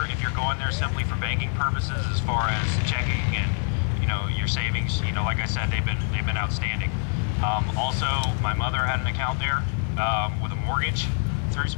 if you're going there simply for banking purposes, as far as checking and your savings, like I said, they've been outstanding. Also, my mother had an account there with a mortgage through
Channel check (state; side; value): silent; right; 57 dB below the other